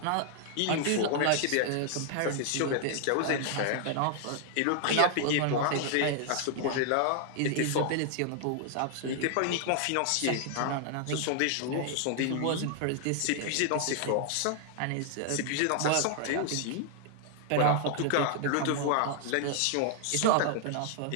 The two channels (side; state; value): both; different; correlation 0.00